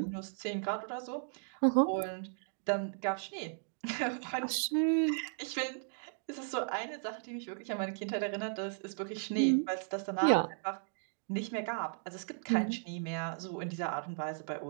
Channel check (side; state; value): left; silent; digital silence